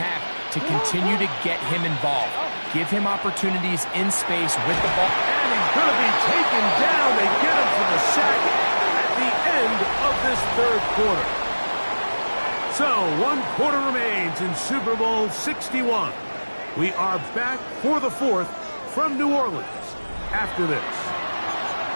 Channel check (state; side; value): inverted; both; correlation -1.00